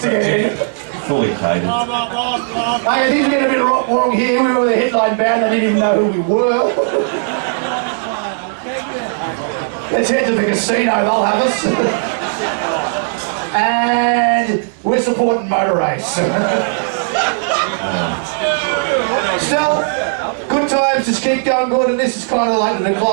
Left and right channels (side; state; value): left; silent; digital silence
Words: to get in. Fully catered. Hey, things are getting a bit wrong here. We were the headline band, they didn't even know who we were. Let's head to the casino, they'll have us. And we're supporting motor race. Still, good times, just keep going good, and this is kind of like the